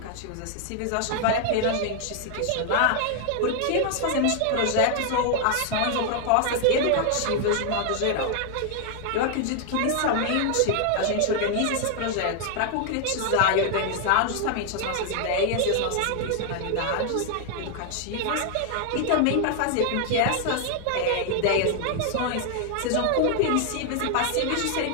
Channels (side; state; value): both; different; correlation 0.00